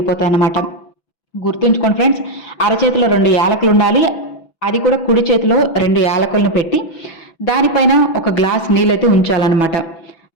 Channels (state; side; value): late; right; 6.0 ms